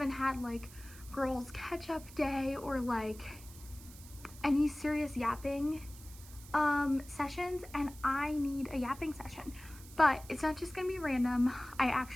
had like girls catch-up day or like any serious yapping sessions, and I need a yapping session. But it's not just gonna be random. I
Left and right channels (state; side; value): noise; right; hiss, 19 dB below the sound